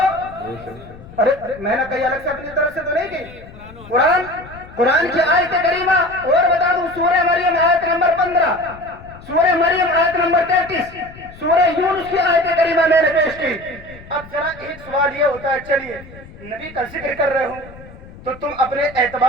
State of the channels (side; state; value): left; noise; rumble, 19 dB below the sound